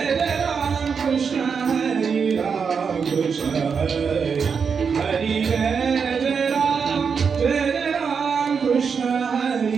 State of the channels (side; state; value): left; quieter; 6.0 dB